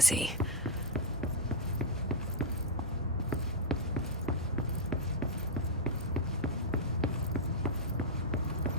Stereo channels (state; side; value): normal; both; correlation -0.03